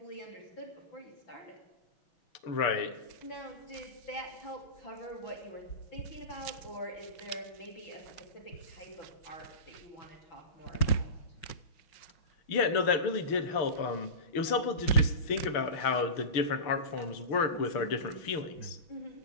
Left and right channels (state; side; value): late; right; 6.7 ms